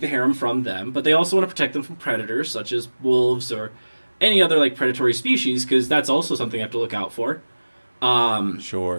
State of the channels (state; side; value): inverted; both; correlation -1.00